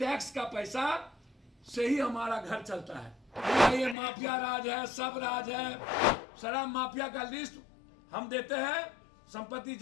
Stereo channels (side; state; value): right; drops out; at 4.0 s